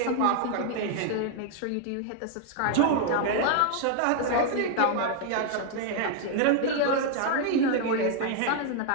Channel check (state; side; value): different; both; correlation 0.00